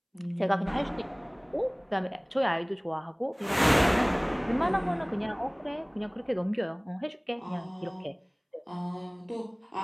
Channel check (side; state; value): both; identical; correlation 1.00